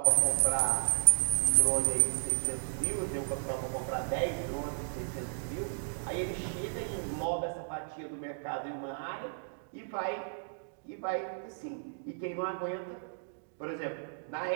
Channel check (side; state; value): left; silent; digital silence